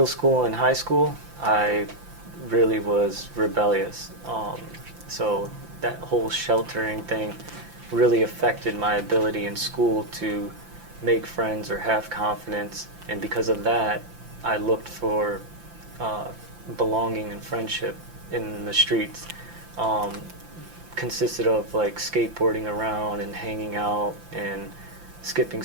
school and high school, I really was rebellious. So that whole sheltering thing really affected my ability in school to make friends or have confidence. And because of that, I looked for belonging and friendship in the streets. Consisted of like skateboarding around and hanging out and skipping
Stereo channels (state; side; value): late; left; 5.8 ms